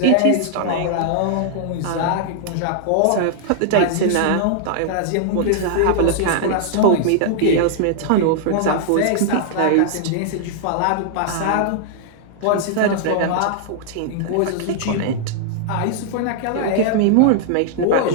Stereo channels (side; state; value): both; different; correlation -0.01